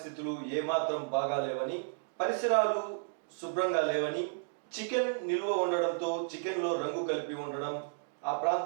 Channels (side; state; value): left; silent; digital silence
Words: ఏమాత్రం బాగాలేవని, పరిసరాలు శుభ్రంగా లేవని, చికెన్ నిల్వ ఉండడంతో చికెన్లో రంగు కలిపి ఉండడం, ఆ